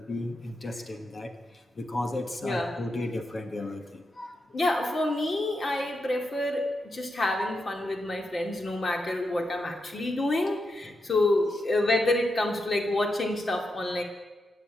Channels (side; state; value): both; normal; correlation 0.86